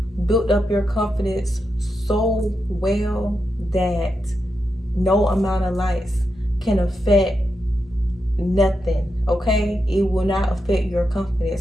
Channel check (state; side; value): normal; both; correlation 0.86